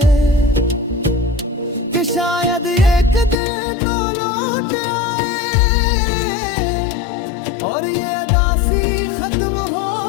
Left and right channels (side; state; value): right; drops out; at 3.4 s